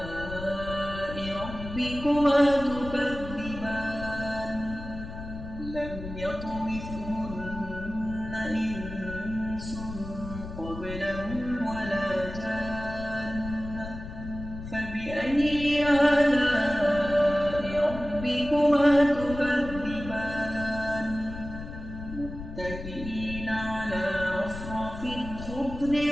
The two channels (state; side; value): noise; left; rumble, 10 dB below the sound